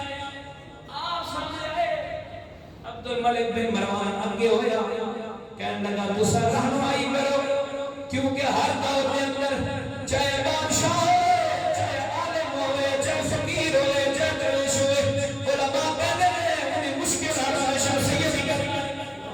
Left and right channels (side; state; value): both; identical; correlation 1.00